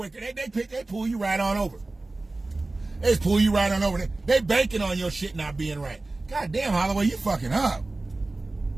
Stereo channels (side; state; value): left; quieter; 3.1 dB